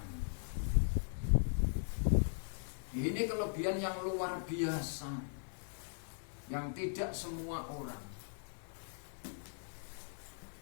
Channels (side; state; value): right; silent; 51 dB below the other